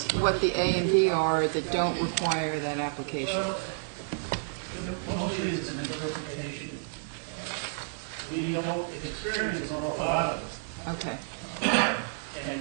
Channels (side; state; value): left; silent; digital silence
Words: what the A and B are that don't require that application. Well, mostly it's an interpretation. We don't experience an awful lot of it. Okay.